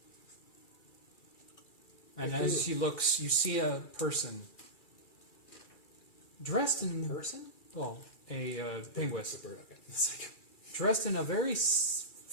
And as he looks, you see a person dressed in Person? well, a penguin, It's a bird, okay. It's like, dressed in a very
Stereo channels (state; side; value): late; right; 2.3 ms